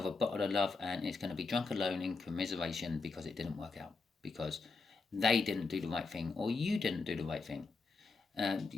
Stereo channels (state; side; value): quieter; right; 4.1 dB